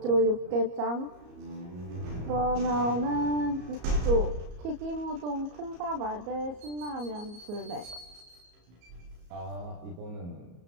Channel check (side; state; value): left; late; 34 ms